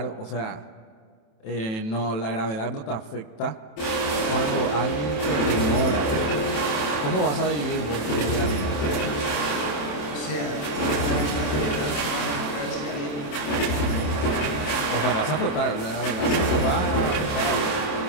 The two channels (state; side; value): late; right; 27 ms